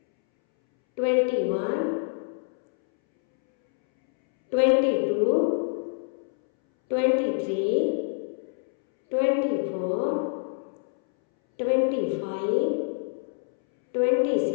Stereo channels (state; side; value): silent; right; 61 dB below the other